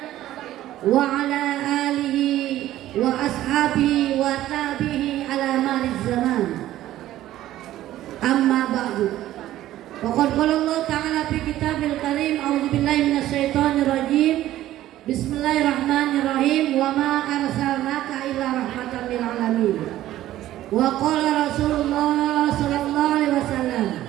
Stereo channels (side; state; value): left; quieter; 14.0 dB